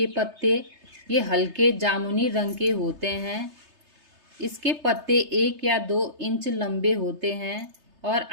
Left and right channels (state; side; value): late; left; 3.3 ms